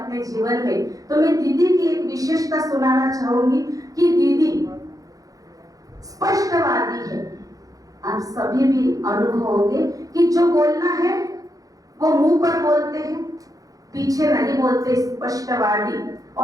जीवन में, तो मैं दीदी की एक विशेषता सुनाना चाहूंगी कि दीदी स्पष्टवादी है। आप सभी भी अनुभव होंगे कि जो बोलना है वो मुंह पर बोलते हैं, पीछे नहीं बोलते, स्पष्टवादी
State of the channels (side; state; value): left; late; 0.17 ms